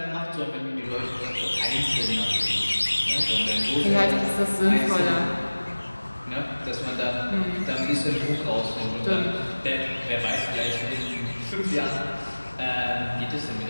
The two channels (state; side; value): inverted; both; correlation -1.00